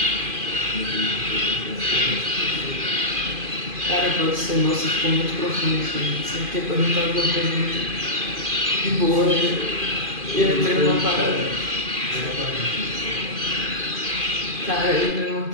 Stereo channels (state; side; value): late; left; 2.5 ms